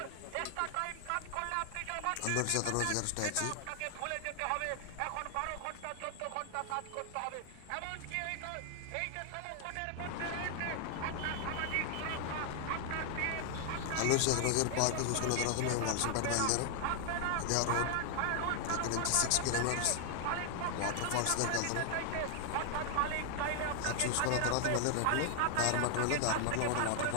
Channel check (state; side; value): different; both; correlation 0.00